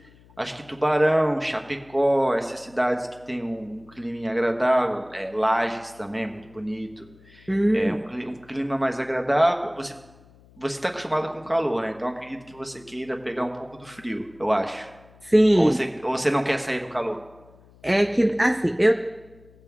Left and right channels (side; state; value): left; noise; hum, 27 dB below the sound